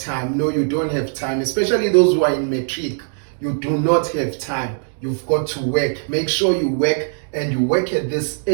No, you don't have time, especially those who are in matric. You do not have time. You've got to work. Make sure you work, and you work at this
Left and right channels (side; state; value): left; silent; digital silence